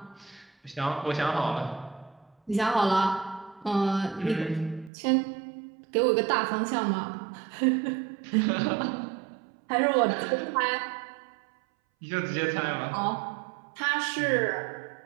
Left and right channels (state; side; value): drops out; left; at 4.9 s